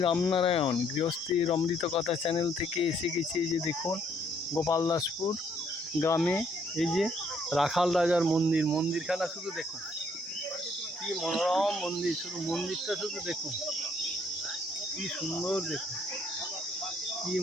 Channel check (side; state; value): both; normal; correlation 0.67